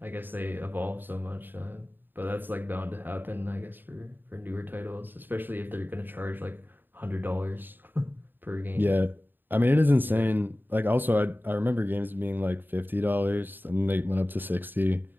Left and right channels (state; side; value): late; left; 0.093 ms